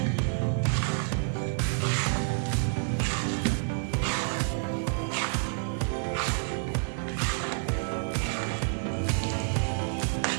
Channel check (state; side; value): silent; left; 57 dB below the other